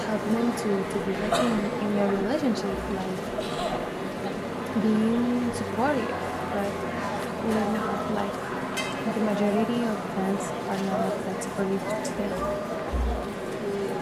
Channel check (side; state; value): both; identical; correlation 1.00